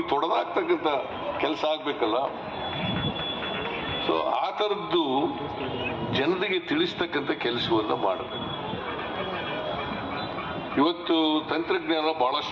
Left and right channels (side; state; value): both; identical; correlation 1.00